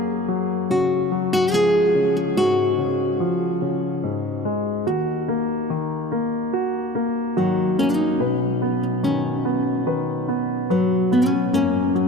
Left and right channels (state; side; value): normal; both; correlation 0.44